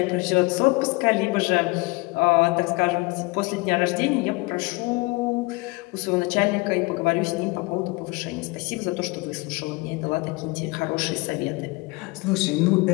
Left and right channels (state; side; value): quieter; right; 25.1 dB